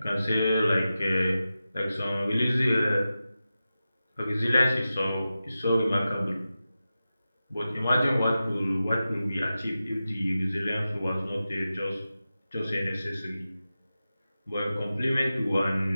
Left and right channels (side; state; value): both; inverted; correlation -0.93